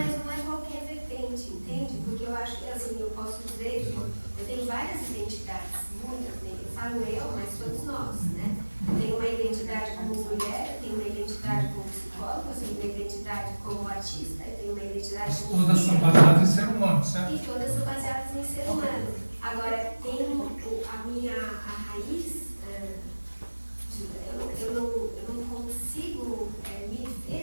não é qualquer vertente, entende? Porque eu acho que, assim, eu posso dizer que eu tenho várias identidades, muitas, né? Eu falo eu, mas todos nós, né? Eu tenho uma identidade como mulher, eu tenho uma identidade como psicóloga, eu tenho uma identidade como artista, eu tenho uma identidade como todas são baseadas em ser humano, certo? E todas são baseadas em ser humano. Agora, tem a raiz, eu não consigo me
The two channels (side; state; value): both; inverted; correlation -1.00